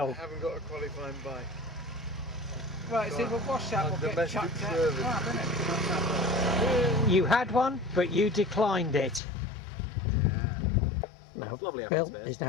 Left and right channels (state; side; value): drops out; right; at 9.2 s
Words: I haven't got a qualifying bike. Right, so we'll wash that, we'll get Domestic chucked out. service. Right, innit? You had one, but you declined it. Yeah. Well, Lovely Bill atmosphere. is